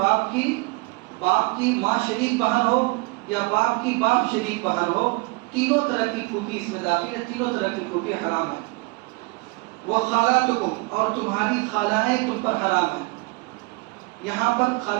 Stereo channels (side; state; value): left; quieter; 26.4 dB